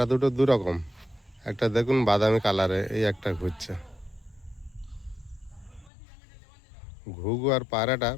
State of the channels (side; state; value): right; drops out; at 5.9 s